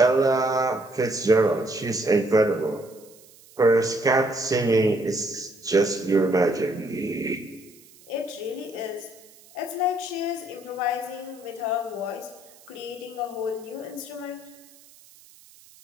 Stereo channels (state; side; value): noise; right; hiss, 25 dB below the sound